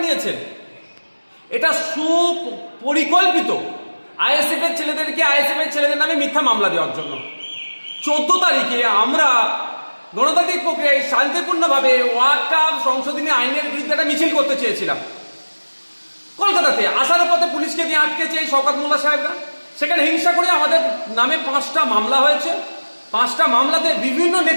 নিয়েছেন। এটা সুপরিকল্পিত আইএসএফ এর ছেলেদেরকে আইএসএফ এর ছেলেদের নামে মিথ্যা মামলা দেওয়ার জন্য। 14 তারিখে আমরা গণতান্ত্রিক প্রক্রিয়ায় শান্তিপূর্ণভাবে ওয়াকফ সংশোধনী আইনের বিরুদ্ধে একটা মিছিল করতে চেয়েছিলাম কলকাতাতে। আসার পথে পুলিশকে দিয়ে আটকেছে এই শওকত মোল্লা সাহেবরা। সেখানে হিংসা করে আমাদের নামে 5টা মামলা হয়েছে। 5টা মামলাতে বিভিন্ন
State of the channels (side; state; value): both; inverted; correlation -1.00